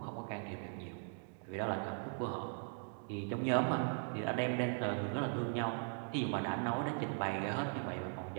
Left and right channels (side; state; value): left; silent; 52 dB below the other